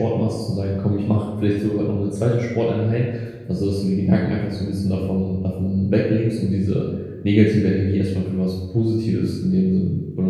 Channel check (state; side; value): identical; both; correlation 1.00